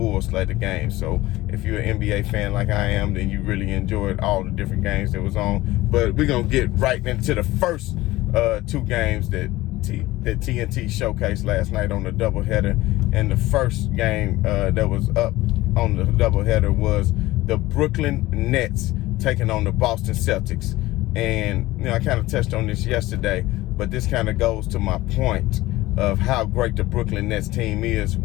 slate of games. So if you're an NBA fan like I am, then you really enjoyed all the different games that was on. But we're going to get right into the first 2 games that TNT showcased last night on the doubleheader. And the first game that was up on the doubleheader was the Brooklyn Nets taking on the Boston Celtics. And, you know, I kind of touched on this yesterday, but this kind of goes to my point of how great the Brooklyn Nets team is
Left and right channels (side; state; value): right; quieter; 17.9 dB